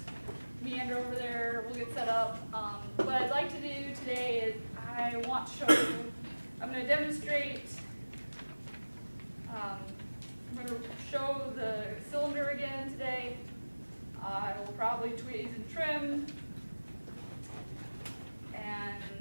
meander over there, we'll get set up. What I'd like to do today is I want to show you, I'm going to demonstrate, I'm going to show the cylinder again today. I will probably tweeze and trim, and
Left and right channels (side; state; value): both; inverted; correlation -1.00